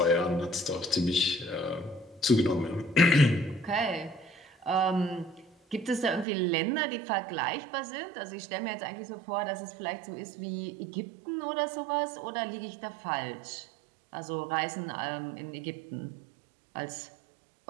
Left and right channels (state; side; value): drops out; left; at 6.2 s